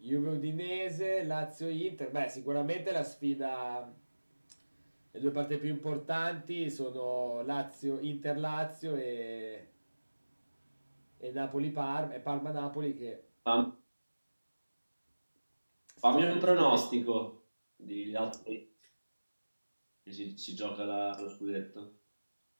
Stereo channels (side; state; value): both; inverted; correlation -1.00